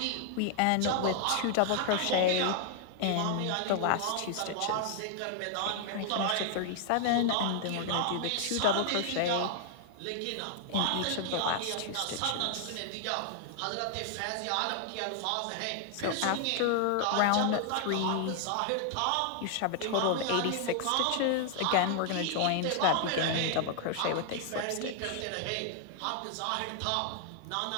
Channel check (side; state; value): both; different; correlation 0.00